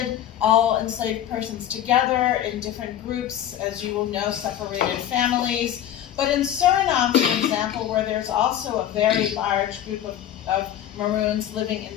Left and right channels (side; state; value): right; quieter; 11.1 dB